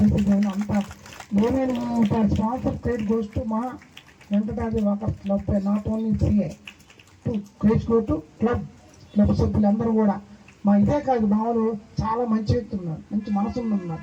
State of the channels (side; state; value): both; identical; correlation 1.00